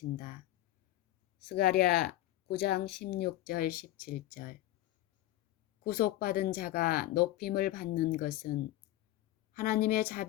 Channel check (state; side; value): quieter; right; 14.9 dB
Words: 스가랴 9장 16절 17절. 구속받은 자가 높임을 받는 것은 하나님의